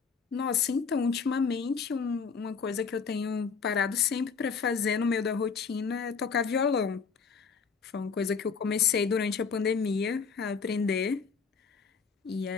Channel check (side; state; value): right; quieter; 5.7 dB